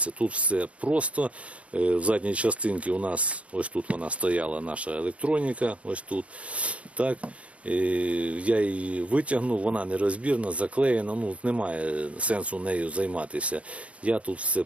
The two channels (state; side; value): late; left; 0.063 ms